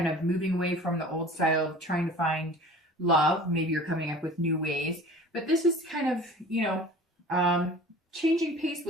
of moving away from the old style of trying to find love. Maybe you're coming up with new ways, but this is kind of, changing pace a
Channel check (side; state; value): both; normal; correlation 0.43